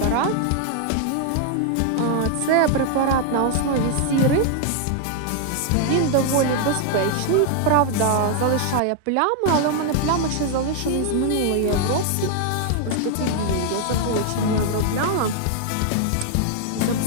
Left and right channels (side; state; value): both; different; correlation 0.00